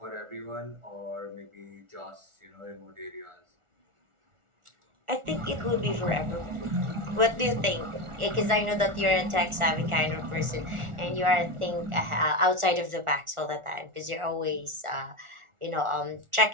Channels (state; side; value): late; left; 1.4 ms